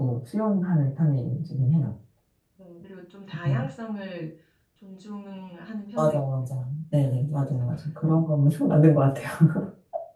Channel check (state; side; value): identical; both; correlation 1.00